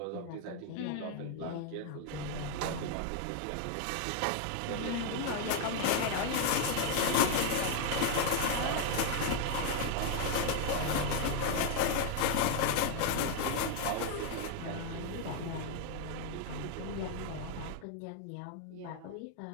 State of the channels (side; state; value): both; different; correlation 0.00